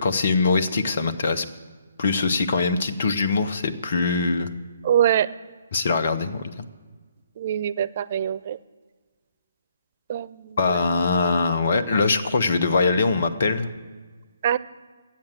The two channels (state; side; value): inverted; both; correlation -0.68